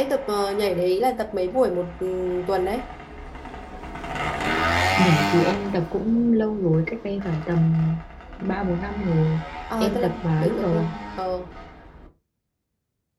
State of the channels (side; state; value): both; identical; correlation 1.00